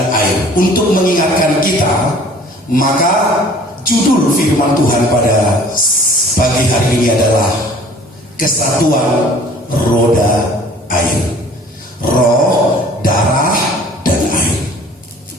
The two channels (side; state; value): both; normal; correlation 0.50